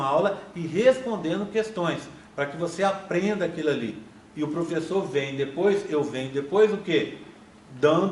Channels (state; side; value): identical; both; correlation 1.00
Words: aula e respondendo questões, para que você aprenda aquilo ali. E o professor vem depois, eu venho depois, o quê?